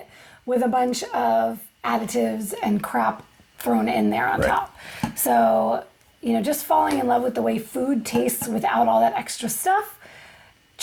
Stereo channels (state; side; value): identical; both; correlation 1.00